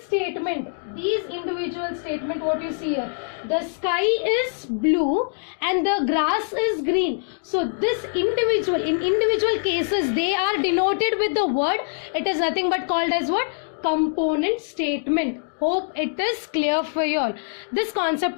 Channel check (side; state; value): right; silent; digital silence